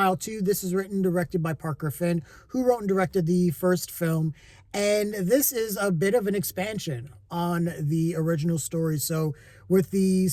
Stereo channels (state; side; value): identical; both; correlation 1.00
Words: 2. This is written and directed by Parker Finn, who wrote and directed the first film. And this is a bit of an expansion on the original story. So with the